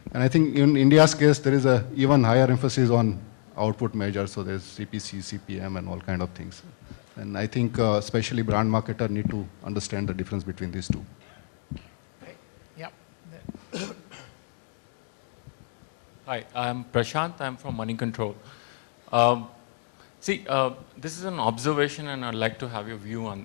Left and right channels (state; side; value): silent; right; digital silence